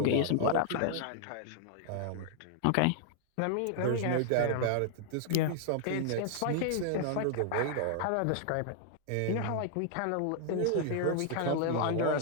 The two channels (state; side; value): different; both; correlation -0.01